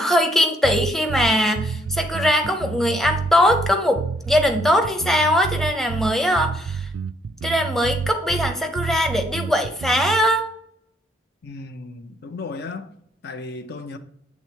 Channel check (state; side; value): normal; both; correlation 0.68